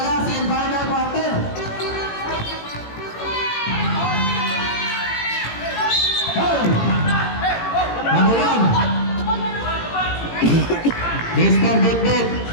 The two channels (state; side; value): late; right; 18 ms